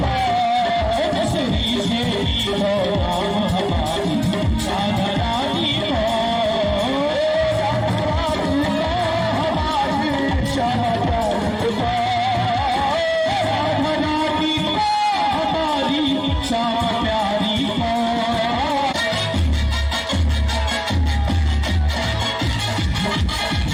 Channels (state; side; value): identical; both; correlation 1.00